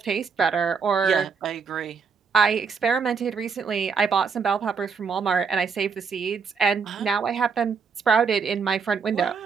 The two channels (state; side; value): quieter; left; 5.6 dB